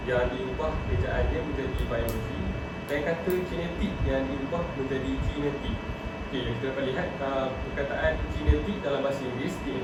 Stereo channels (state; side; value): identical; both; correlation 1.00